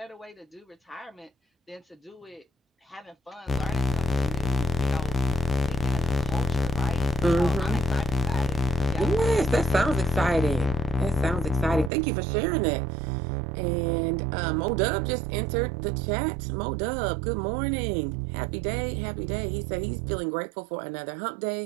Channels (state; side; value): drops out; left; at 11.9 s